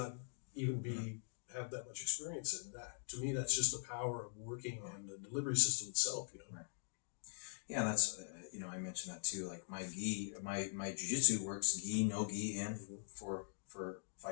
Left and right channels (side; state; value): right; silent; digital silence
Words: even have that much experience in. That, to me, that's just the power of working on the delivery system itself, Right. Yeah, that's, I mentioned that too. Like my jiu-jitsu works gi, no gi, and for